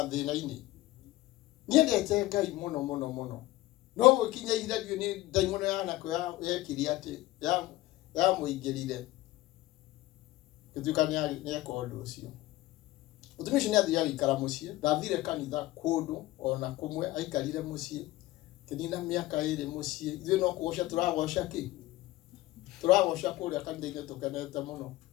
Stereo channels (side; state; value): right; quieter; 17.2 dB